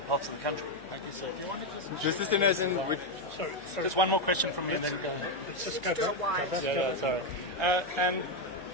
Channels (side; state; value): left; noise; hum, 26 dB below the sound